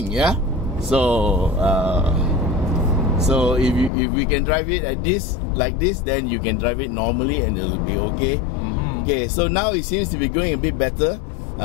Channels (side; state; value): right; drops out; at 3.9 s